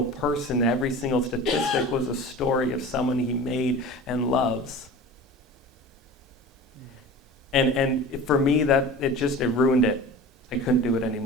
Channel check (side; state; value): both; normal; correlation 0.36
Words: person, every single statistic was a story of someone he made and loves. And for me, it ruined it. I couldn't do it